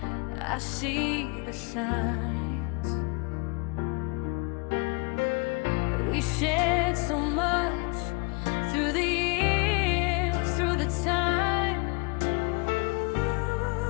I see the signs. We shared so much through the years, through the time.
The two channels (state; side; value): quieter; right; 30.8 dB